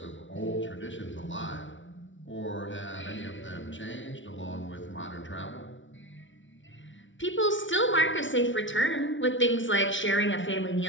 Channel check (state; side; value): late; right; 0.56 ms